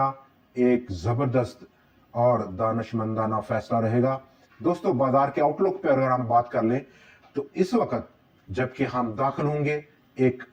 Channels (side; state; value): both; identical; correlation 1.00